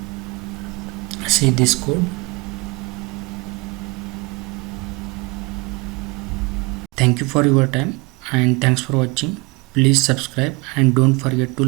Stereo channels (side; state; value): left; quieter; 25.7 dB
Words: See this code. Thank you for your time and thanks for watching. Please subscribe and don't forget to